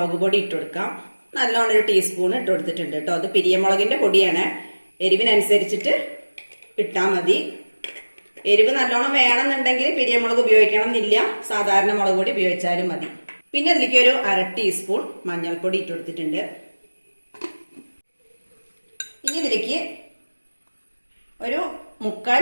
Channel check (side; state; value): both; inverted; correlation -1.00